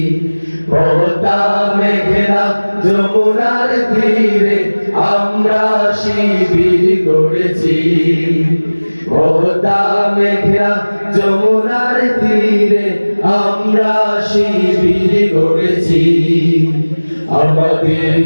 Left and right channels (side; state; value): both; inverted; correlation -1.00